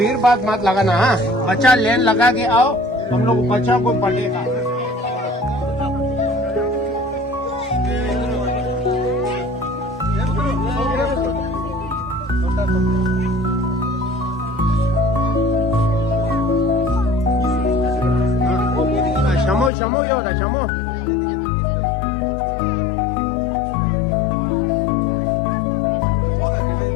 बात मत लगाना, हाँ बच्चा लेन लगा के आओ, हम लोग बच्चा को पढ़ेगा। शमो ये होता शमो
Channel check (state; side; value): drops out; right; at 19.7 s